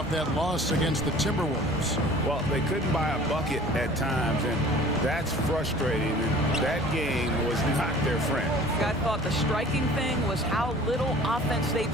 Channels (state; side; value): normal; both; correlation 0.47